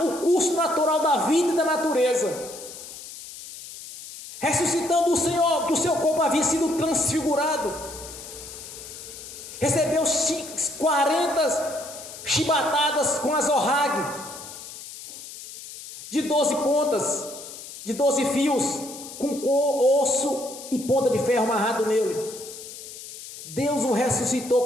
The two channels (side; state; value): left; noise; hiss, 13 dB below the sound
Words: o curso natural da vida e da natureza, ressuscitando o Senhor, que o seu corpo havia sido transfigurado, recebeu 40 chibatadas com azorrague, de 12 pontas, de 12 fios, com osso e ponta de ferro amarrado nele. Deus o ressuscitou